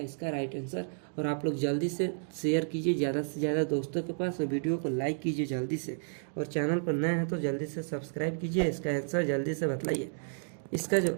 राइट आंसर, और आप लोग जल्दी से शेयर कीजिए ज़्यादा से ज़्यादा दोस्तों के पास, और वीडियो को लाइक कीजिए जल्दी से, और चैनल पर नए हैं तो जल्दी से सब्सक्राइब कीजिए। इसका आंसर जल्दी से बतलाइए। इसका जो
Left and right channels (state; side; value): silent; left; digital silence